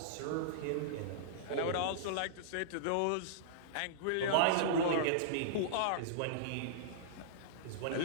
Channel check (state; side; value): different; both; correlation -0.03